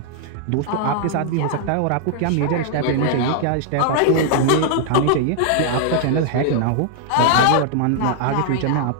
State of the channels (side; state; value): both; different; correlation -0.01